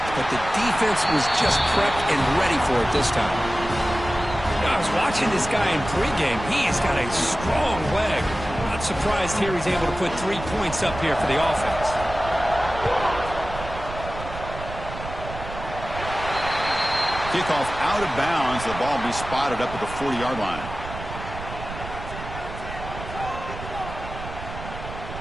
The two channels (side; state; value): right; noise; rumble, 10 dB below the sound